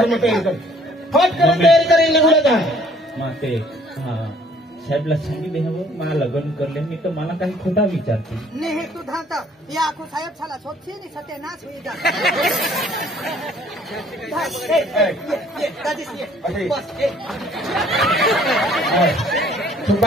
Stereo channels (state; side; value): normal; both; correlation 0.58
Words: में तयारी कर फट कर तयारी करेल गुलागा माते हा साहेबला सांगितले हवं मला लग्न करले मी तर मला काही खोटा विचारते नाही तू धाता या आखो साहेब छाला सोपशी नि सत्यानाश होई जा तू